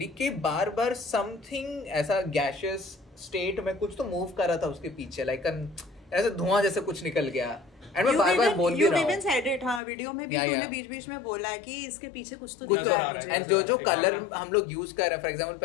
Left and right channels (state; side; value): drops out; right; at 9.8 s